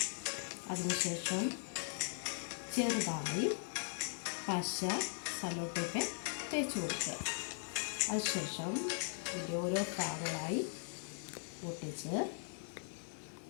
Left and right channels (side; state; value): right; silent; digital silence